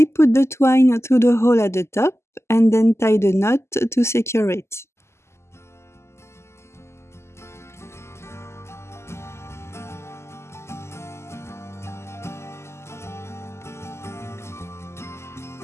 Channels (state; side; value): late; right; 0.13 ms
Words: put the twine through the hole at the top and then tied a knot to secure it.